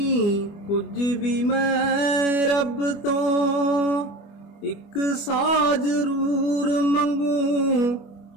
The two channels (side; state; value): right; late; 25 ms